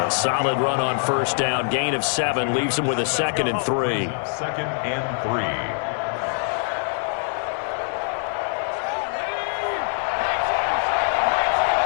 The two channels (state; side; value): silent; right; digital silence